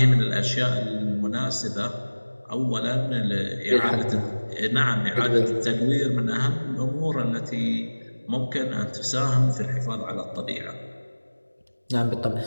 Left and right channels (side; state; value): both; inverted; correlation -1.00